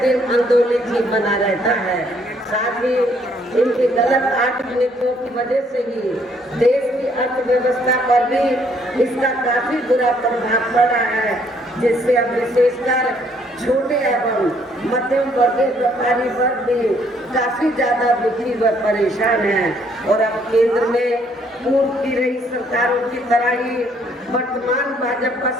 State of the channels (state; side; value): normal; both; correlation 0.67